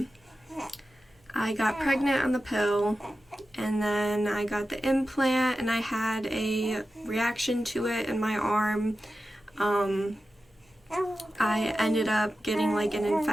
I got pregnant on the pill, and then I got the implant and I had a reaction to it in my arm. I ended up getting like an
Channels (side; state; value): both; normal; correlation 0.93